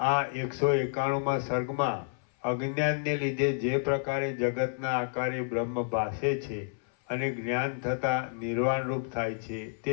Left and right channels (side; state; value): right; silent; 57 dB below the other